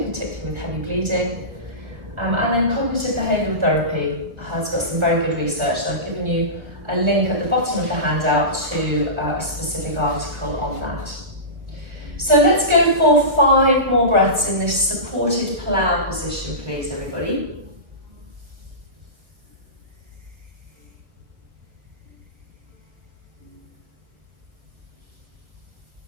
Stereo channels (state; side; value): late; left; 1.5 ms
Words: particularly with heavy bleeding. And then cognitive behavioural therapy has got some very good research. So I've given you a link at the bottom of the handout to a specific article on that. So let's go for 5 more breaths in this supported plough position, please, everybody.